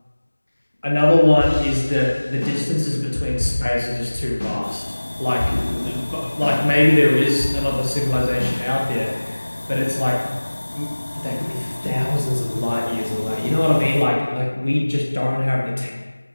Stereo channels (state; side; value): inverted; both; correlation -1.00